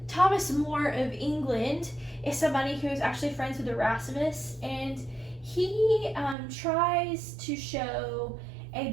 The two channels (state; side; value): drops out; left; at 6.4 s